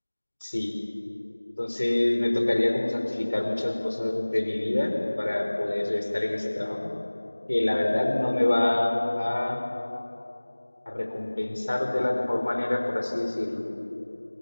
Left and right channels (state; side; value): inverted; both; correlation -1.00